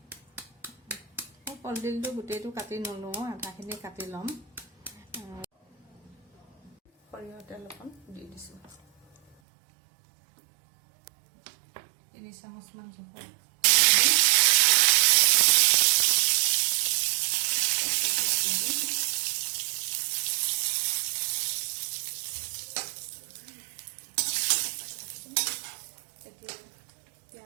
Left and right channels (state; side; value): drops out; left; at 9.3 s